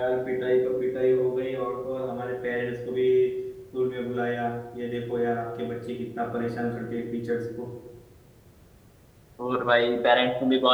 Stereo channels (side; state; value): both; identical; correlation 1.00